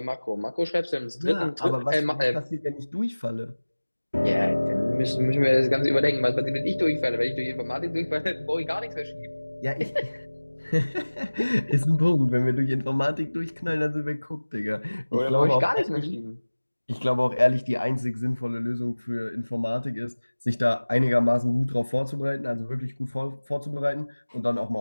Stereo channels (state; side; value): inverted; both; correlation -1.00